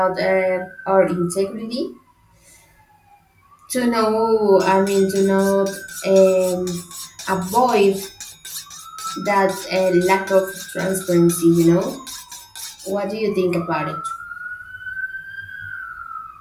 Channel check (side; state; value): both; identical; correlation 1.00